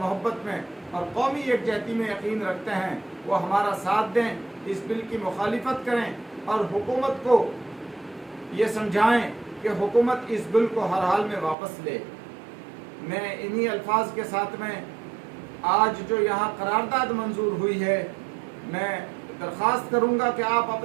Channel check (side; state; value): left; drops out; at 11.6 s